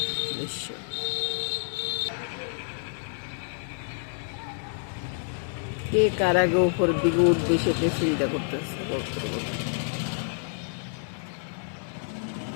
দৃশ্য। কে কার আগে উপর দিকে উঠবে সেটা চিন্তা করতেছে কবুতরগুলো।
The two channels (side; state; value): right; silent; 57 dB below the other